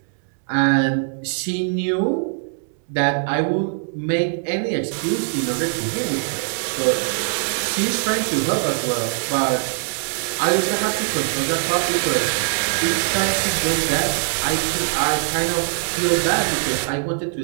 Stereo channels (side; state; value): left; silent; digital silence